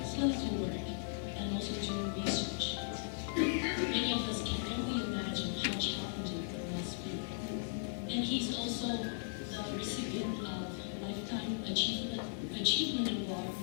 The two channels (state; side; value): silent; right; digital silence